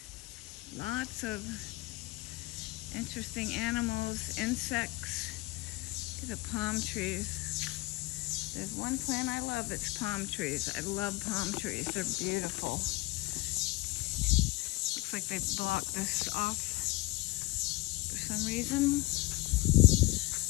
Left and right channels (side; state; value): right; quieter; 21.5 dB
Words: lots of interesting animals, insects. Look at the palm trees. There's one plant I love, it's palm trees. I love palm trees, they're beautiful. Looks like they blocked this off for some reason.